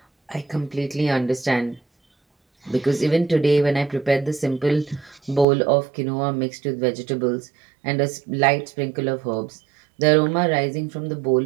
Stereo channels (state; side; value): drops out; left; at 5.5 s